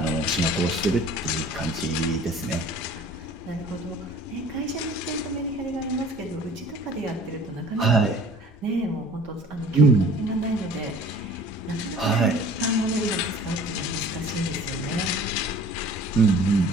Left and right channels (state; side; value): normal; both; correlation 0.48